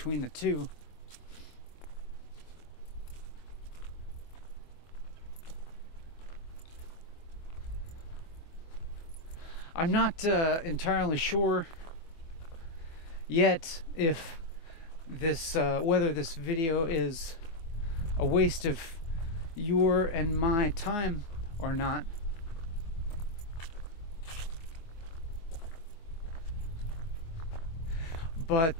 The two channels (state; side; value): late; right; 24 ms